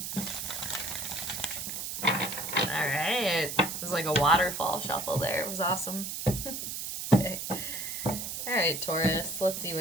All right, it was like a waterfall shuffle there. It was awesome. Okay. All right, Taurus, let's see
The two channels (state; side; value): noise; right; hiss, 5 dB below the sound